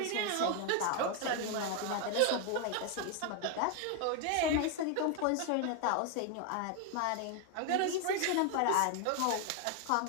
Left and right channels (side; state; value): both; different; correlation 0.01